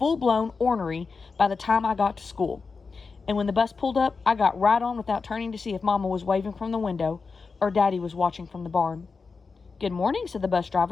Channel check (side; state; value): right; quieter; 4.7 dB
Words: ornery by the time I got to school. And when the bus pulled up, I got right on without turning to see if Mama was waving from the window or Daddy was watching from the barn. "Good morning," said the bus